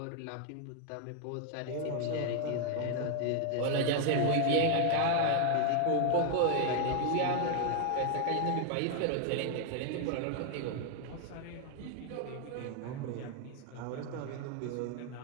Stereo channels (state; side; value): different; both; correlation 0.01